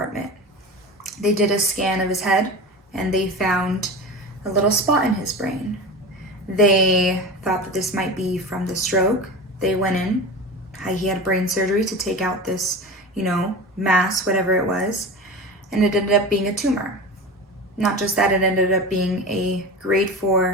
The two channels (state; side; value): normal; both; correlation 0.29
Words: They did a scan of his head and they found a little spot in his brain. They thought that this might be from the stroke. They went in. He had brain surgery to take out this, mass, whatever it was, and it ended up being a tumor. Not just that, it ended up being a grade